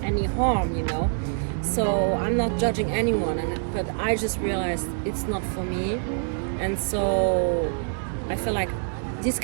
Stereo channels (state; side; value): silent; left; digital silence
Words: any harm, you know. So I'm not judging anyone, but I just realized it's not for me, and so I feel like these